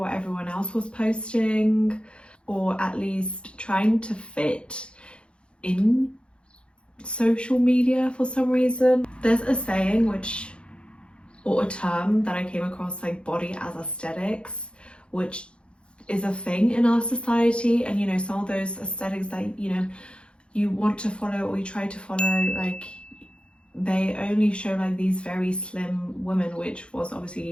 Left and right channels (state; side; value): late; right; 0.056 ms